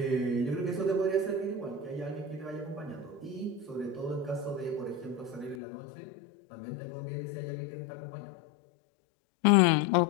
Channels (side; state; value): right; drops out; at 5.6 s